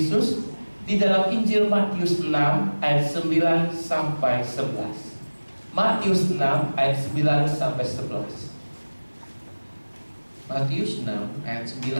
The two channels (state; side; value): inverted; both; correlation -1.00